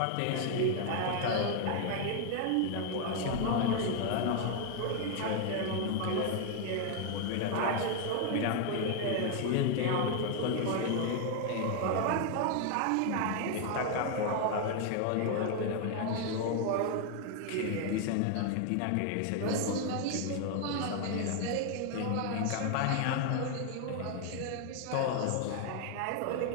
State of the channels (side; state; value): both; different; correlation 0.00